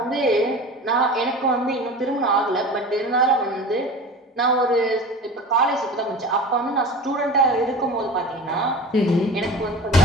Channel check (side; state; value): both; normal; correlation 0.35